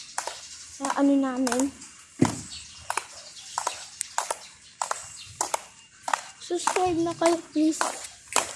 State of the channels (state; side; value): identical; both; correlation 1.00